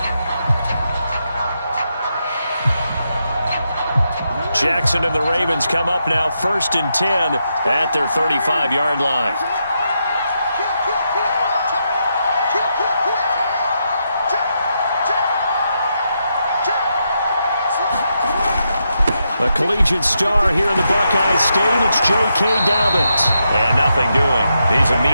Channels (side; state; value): both; inverted; correlation -0.83